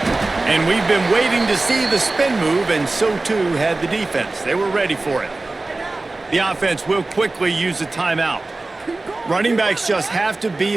And we've been waiting to see the spin move, and so too had the defense. They were ready for it. The offense will quickly use a timeout. Running backs just have to be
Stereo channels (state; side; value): quieter; left; 3.2 dB